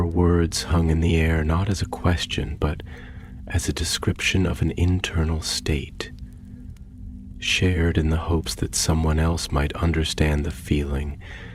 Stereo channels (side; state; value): both; identical; correlation 1.00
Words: words hung in the air not as a question, but as a description of an internal state, shared in the hopes that someone else might understand the feeling,